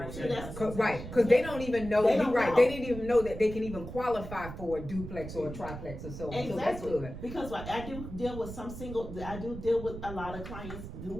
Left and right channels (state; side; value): noise; right; rumble, 10 dB below the sound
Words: We'll say, That's Because they don't even know. They You're don't right. know. They didn't even know that they can even qualify for a duplex or a triplex or so. Exactly. So that's good. Because I do deal with I do deal with a lot of clients who